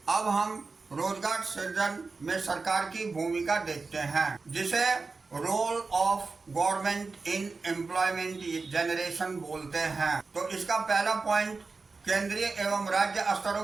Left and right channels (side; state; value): left; quieter; 4.1 dB